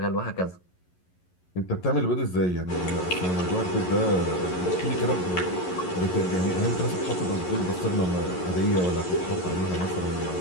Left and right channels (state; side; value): late; right; 11 ms